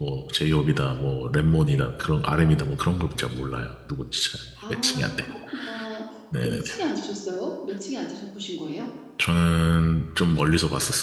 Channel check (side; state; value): both; identical; correlation 1.00